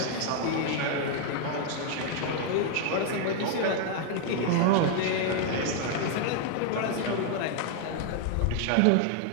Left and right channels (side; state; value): both; different; correlation 0.00